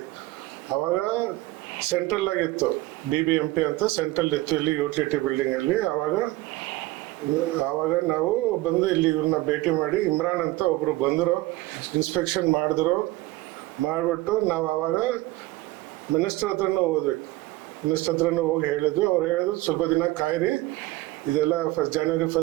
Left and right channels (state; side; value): quieter; left; 18.7 dB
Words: ಆವಾಗ ಸೆಂಟ್ರಲ್ ಆಗಿತ್ತು, BBMP ಅಂತ ಸೆಂಟ್ರಲ್ ಇತ್ತು ಇಲ್ಲಿ ಯುಟಿಲಿಟಿ ಬಿಲ್ಡಿಂಗಲ್ಲಿ. ಆವಾಗ ನಾವು ಬಂದು ಇಲ್ಲಿ ಇವ್ರನ್ನ ಭೇಟಿ ಮಾಡಿ, ಇಮ್ರಾನ್ ಅಂತ ಒಬ್ರು ಬಂದರು, ಇನ್ಸ್ಪೆಕ್ಷನ್ ಮಾಡಿಬಿಟ್ಟು ನಾವು ಆವಾಗ ಮಿನಿಸ್ಟರ್ ಹತ್ರನೂ ಹೋದ್ವಿ. ಮಿನಿಸ್ಟರ್ ಹತ್ರನೂ ಹೋಗಿ ಹೇಳಿದ್ವಿ. ಅವ್ರು ಹೇಳಿದ್ರು ಸ್ವಲ್ಪ ದಿನ ಕಾಯಿರಿ, ಇದೆಲ್ಲ ಜನವರಿ